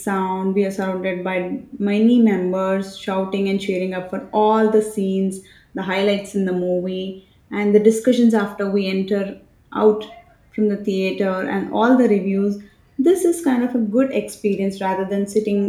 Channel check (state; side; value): identical; both; correlation 1.00